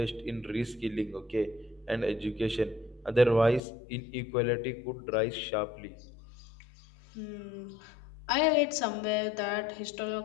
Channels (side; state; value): right; drops out; at 3.6 s